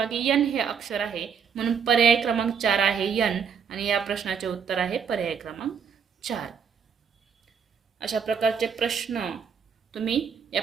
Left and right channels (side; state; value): left; quieter; 6.8 dB